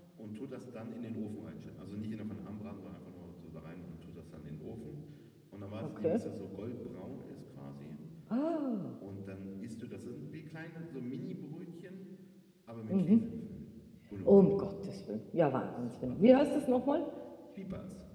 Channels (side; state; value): both; identical; correlation 1.00